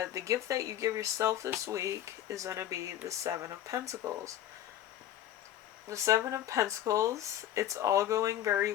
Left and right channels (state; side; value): quieter; right; 11.7 dB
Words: gift that you give yourself this week is going to be the 7 of Pentacles. The 7 of Pentacles, it's all going very